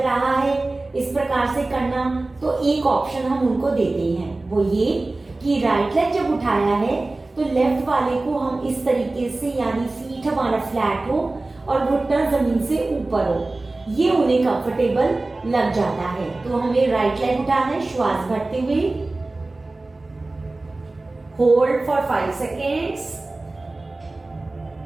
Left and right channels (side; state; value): left; quieter; 3.1 dB